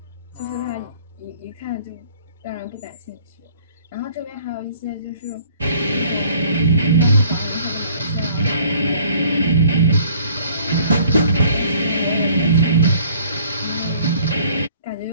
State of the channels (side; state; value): both; inverted; correlation -0.56